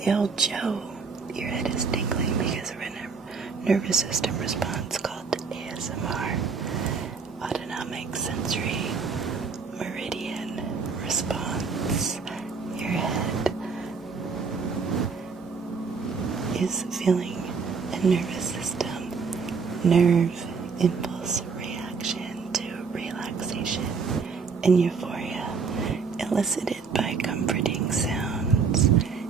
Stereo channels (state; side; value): quieter; left; 5.3 dB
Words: old Joe, your head is tingling because of a nervous system response called ASMR, autonomic sensory meridian response. Your head is feeling a nervous system nerve impulse reaction to relaxation and euphoria elicited by comforting sounds